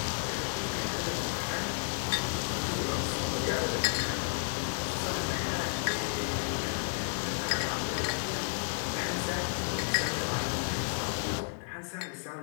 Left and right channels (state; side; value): silent; right; 56 dB below the other